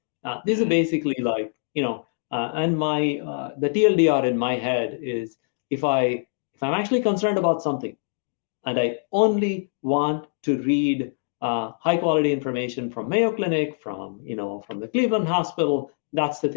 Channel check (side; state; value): right; silent; digital silence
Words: These are basically like and my the TLDR in my head is if I'm actually concerned about something, and I only want to read high quality information from Mayo Clinic, from the Cleveland Hospital, that's the